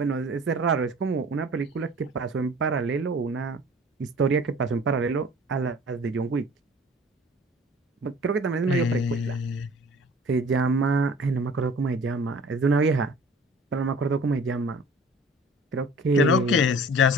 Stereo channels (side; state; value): both; normal; correlation 0.47